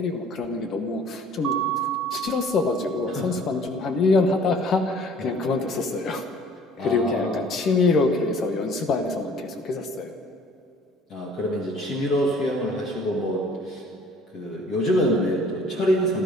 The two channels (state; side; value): normal; both; correlation 0.53